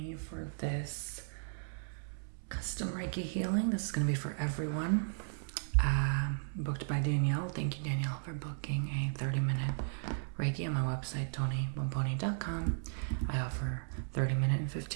for this custom Reiki healing. This is going to be for everyone. Booked by Danielle. Thank you, Danielle, for booking a 30-minute Reiki on my website, Bomboni.com. I offer 30-minute and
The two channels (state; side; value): silent; left; 54 dB below the other